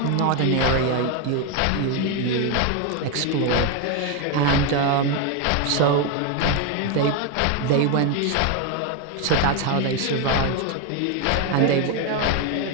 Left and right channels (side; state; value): both; different; correlation 0.01